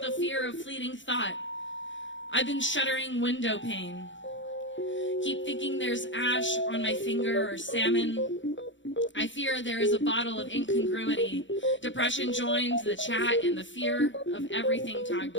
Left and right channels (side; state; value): right; late; 0.55 ms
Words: the fear of fleeting thought? I've been shuddering window pane. Keep thinking there's ash on my finger or salmon. I fear there is a bottle of incongruity. Depression joins the chat and the fear of everything tagged